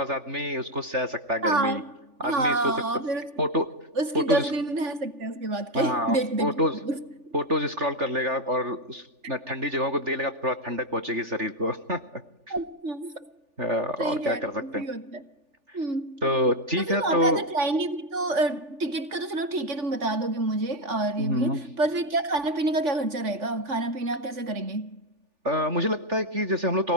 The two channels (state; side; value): late; left; 3.4 ms